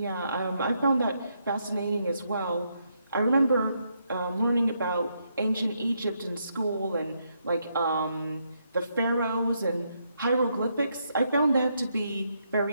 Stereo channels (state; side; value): inverted; both; correlation -0.78